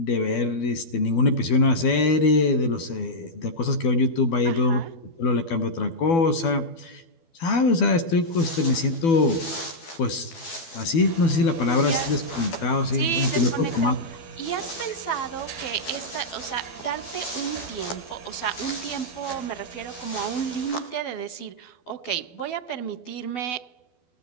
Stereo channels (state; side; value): late; right; 12 ms